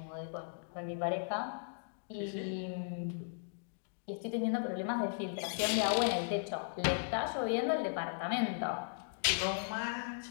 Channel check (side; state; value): right; silent; digital silence